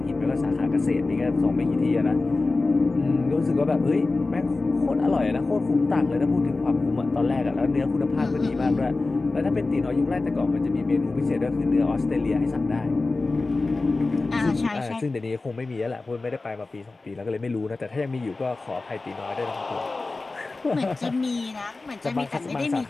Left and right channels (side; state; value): right; quieter; 3.5 dB